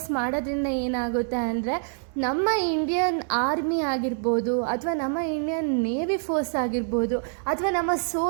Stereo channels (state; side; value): silent; left; digital silence